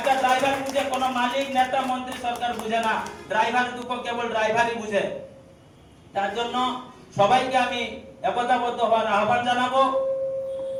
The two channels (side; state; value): both; identical; correlation 1.00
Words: ড্রাইভার বুঝে, কোনো মালিক, নেতা, মন্ত্রী, সরকার বুঝে না। ড্রাইভারের দুঃখ কেবল ড্রাইভারই বুঝে। তার জন্য সবাইকে আমি একতাবদ্ধ হওয়ার আহ্বান জানাবো।